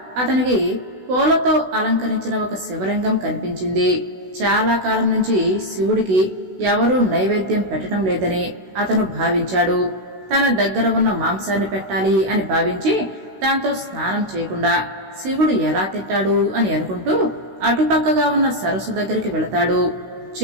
అతనికి పూలతో అలంకరించిన ఒక శివలింగం కనిపించింది. చాలా కాలం నుంచి శివుడికి ఎవరూ నైవేద్యం పెట్టడం లేదని అతను భావించాడు. తన దగ్గర ఉన్న మాంసాన్ని పెట్టాలి అని భావించి దాంతో స్నానం చేయకుండా శివుడు ఎలా తింటాడు అని అనుకుంటూ అటుపక్కగా ఉన్న సరస్సు దగ్గరికి వెళతాడు.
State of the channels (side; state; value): left; late; 16 ms